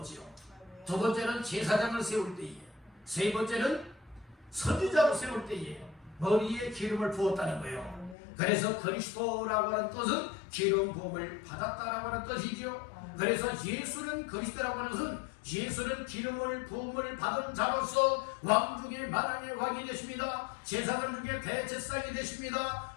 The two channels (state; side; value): drops out; right; at 8.2 s